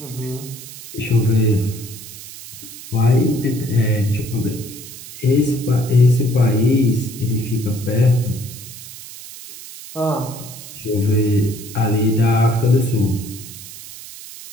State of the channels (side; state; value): right; noise; hiss, 14 dB below the sound